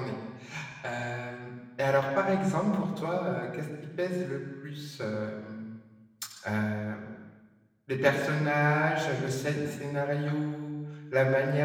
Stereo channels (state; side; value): identical; both; correlation 1.00